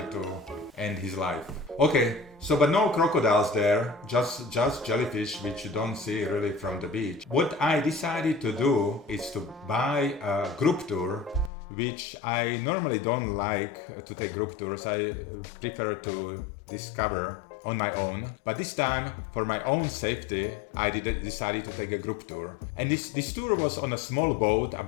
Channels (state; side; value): drops out; right; at 11.5 s